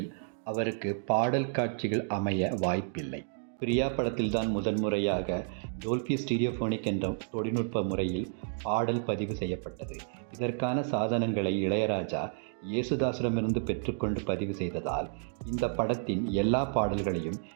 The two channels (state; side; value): silent; left; digital silence